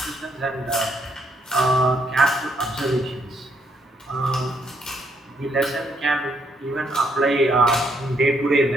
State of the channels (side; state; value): both; normal; correlation 0.73